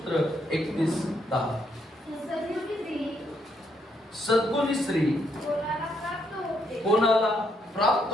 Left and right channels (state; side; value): normal; both; correlation 0.75